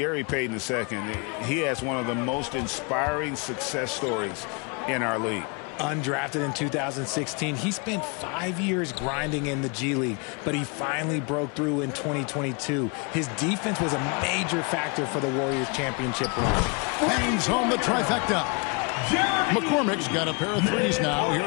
Payton II, he has one of the most inspiring success stories in our league. Undrafted in 2016, he spent 5 years grinding in the G League, but he finally broke through in 2022. His defense was a major factor for the Warriors' championship run. Bangs home the trifecta. McCormick's got a pair of threes now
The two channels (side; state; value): right; quieter; 32.3 dB